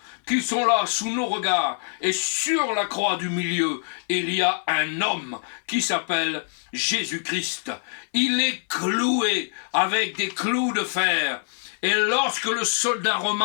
qui sont là sous nos regards. Et sur la croix du milieu, il y a un homme qui s'appelle Jésus-Christ. Il est cloué avec des clous de fer. Et lorsque le soldat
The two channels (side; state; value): right; silent; digital silence